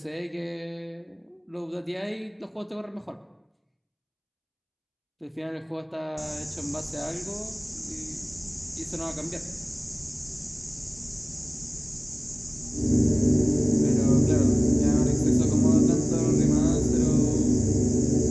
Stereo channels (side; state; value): both; identical; correlation 1.00